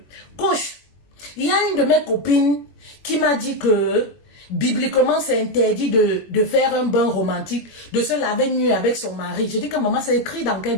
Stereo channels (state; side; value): late; right; 21 ms